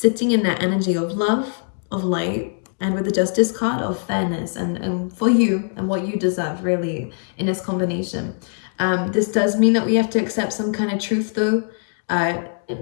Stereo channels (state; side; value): silent; right; digital silence